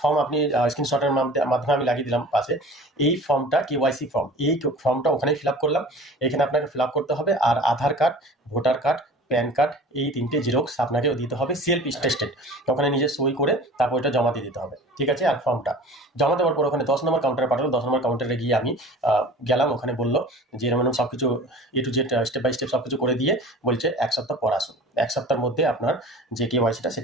ফর্ম আপনি স্ক্রিনশটের মাধ্যমে আমি লাগিয়ে দিলাম পাশে। এই ফর্মটা কেওয়াইসি ফর্ম, এই ফর্মটা ওখানেই ফিল আপ করলাম। এখানে আপনাকে ফিল আপ করতে হবে, আর Aadhaar card, voter card, PAN card, এই 3টে জেরক্স আপনাকে দিতে হবে, সেলফ স্টেটেড। ওখানে নিজে সই করে তারপর এটা জমা দিয়ে দিতে হবে। ঠিক আছে, আর ফর্মটা জমা দেওয়ার পর ওখানে 10 নম্বর কাউন্টারে পাঠালো। 10 নম্বর কাউন্টারে গিয়ে আমি গেলাম, ওখানে বললো যে এরকম সব কিছু A to Z step by step সব কিছু করে দিয়ে বলছে 1 সপ্তাহ পর আসুন, 1 সপ্তাহের মধ্যে আপনার যে কেওয়াইসিটা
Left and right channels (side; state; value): both; normal; correlation 0.41